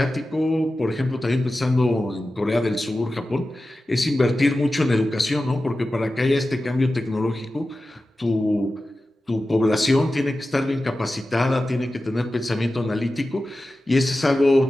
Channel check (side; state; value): both; normal; correlation 0.94